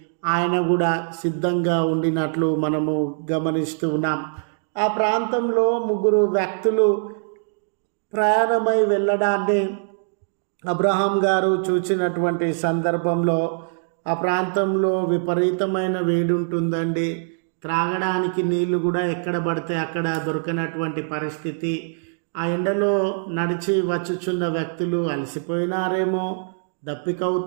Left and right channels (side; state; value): left; silent; digital silence